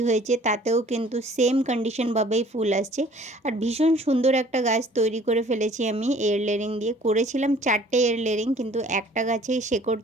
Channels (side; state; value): both; normal; correlation 0.53